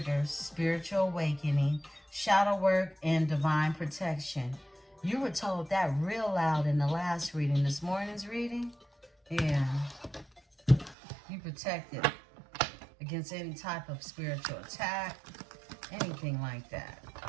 spiritual awakening, shadow work, and divine protection. You were told that real loud in the last reading. This morning's reading? Yeah. You protected against any type of spiritual attack, anything like that.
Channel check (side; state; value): left; drops out; at 11.0 s